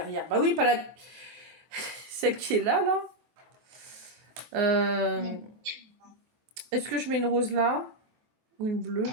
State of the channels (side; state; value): left; late; 24 ms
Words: Bah oui, pas la... Celle qui est là. Est-ce que je mets une rose là? Ou une bleue?